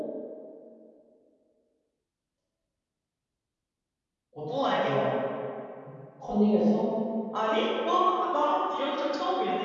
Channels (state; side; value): identical; both; correlation 1.00